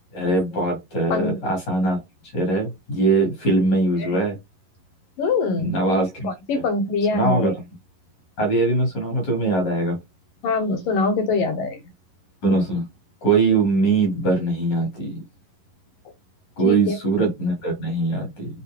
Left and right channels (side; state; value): right; late; 11 ms